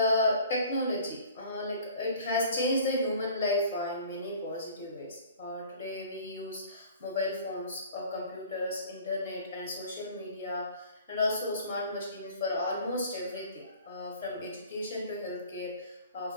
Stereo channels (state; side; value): inverted; both; correlation -0.47